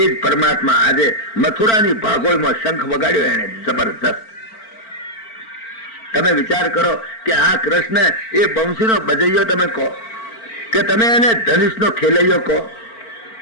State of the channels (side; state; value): right; late; 4.4 ms